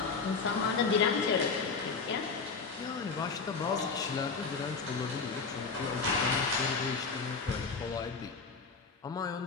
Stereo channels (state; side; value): quieter; right; 4.9 dB